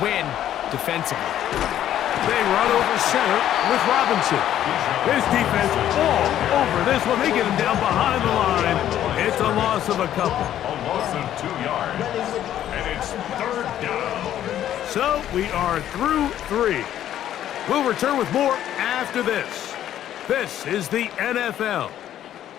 defensively. They run over center with Robinson. His defense all over this one. They get him down behind the line. It's a loss of a couple. A loss of 2 yards. And it's third down. So we are through 3. We'll return with more after this. This is the NFL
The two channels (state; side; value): quieter; right; 11.5 dB